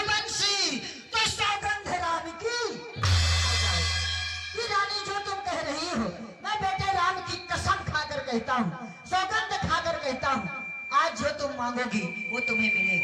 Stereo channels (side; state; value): both; identical; correlation 1.00